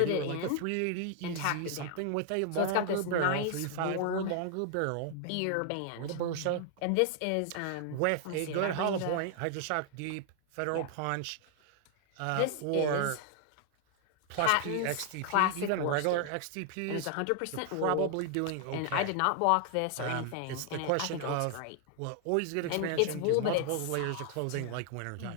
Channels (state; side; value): different; both; correlation 0.00